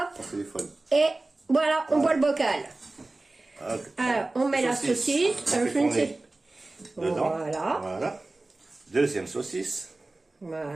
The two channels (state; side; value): quieter; left; 3.0 dB